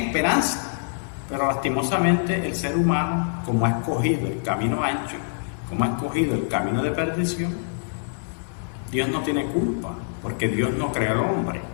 Pero lastimosamente el ser humano, como ha escogido el camino ancho, como ha escogido el camino de perdición, Dios no tiene culpa, porque Dios no creó al hombre.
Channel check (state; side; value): silent; right; digital silence